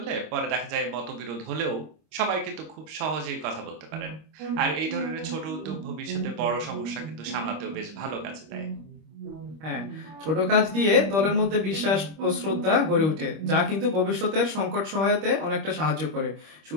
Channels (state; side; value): late; left; 25 ms